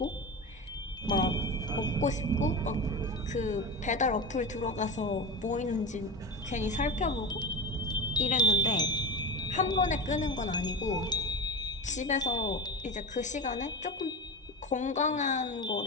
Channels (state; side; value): normal; both; correlation 0.23